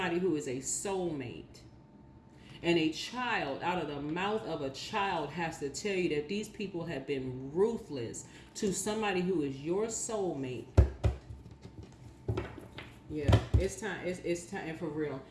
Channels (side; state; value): both; identical; correlation 1.00